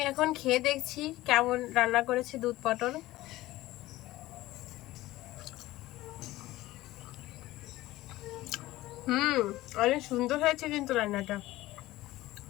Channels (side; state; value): right; quieter; 17.1 dB